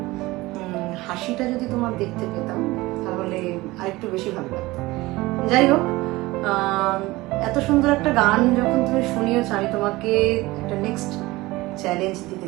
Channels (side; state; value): left; quieter; 20.1 dB